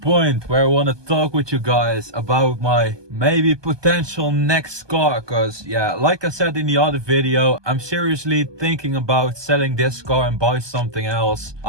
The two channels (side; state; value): left; late; 1.2 ms